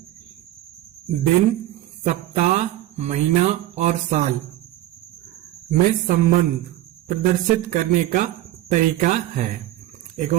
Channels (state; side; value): quieter; left; 14.9 dB